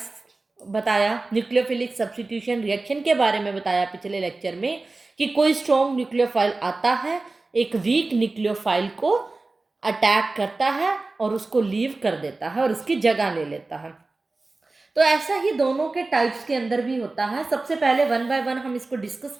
बताया, न्यूक्लियोफिलिक सब्स्टिट्यूशन रिएक्शन के बारे में बताया पिछले लेक्चर में कि कोई स्ट्रॉन्ग न्यूक्लियोफाइल आता है, एक वीक न्यूक्लियोफाइल को अटैक करता है और उसको लीव कर देता है और उसकी जगह ले लेता है. तो ऐसा ही दोनों के टाइप्स के अंदर भी होता है. सबसे पहले वन बाय वन हम इसको डिस्कस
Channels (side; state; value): left; quieter; 3.4 dB